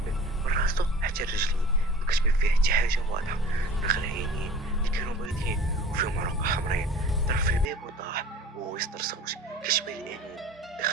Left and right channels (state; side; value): normal; both; correlation 0.44